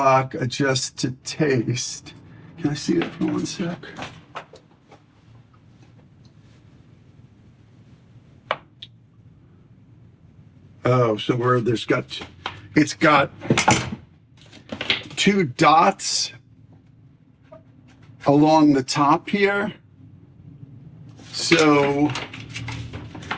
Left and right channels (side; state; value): both; identical; correlation 1.00